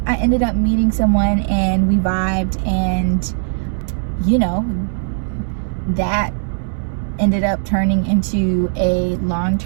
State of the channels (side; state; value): left; silent; 67 dB below the other